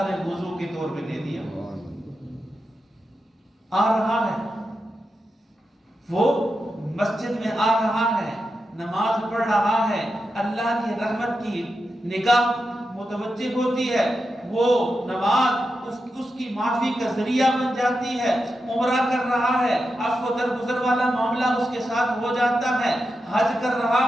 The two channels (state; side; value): normal; both; correlation 0.88